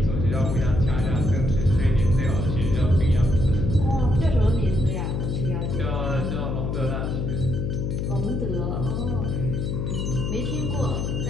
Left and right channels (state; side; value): noise; left; hum, 1 dB below the sound